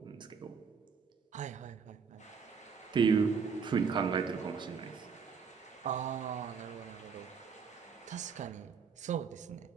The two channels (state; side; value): quieter; left; 5.9 dB